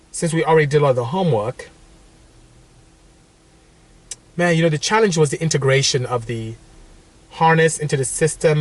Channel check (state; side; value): identical; both; correlation 1.00